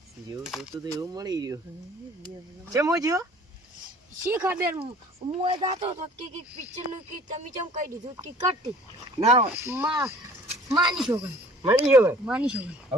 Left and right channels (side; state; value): both; normal; correlation 0.51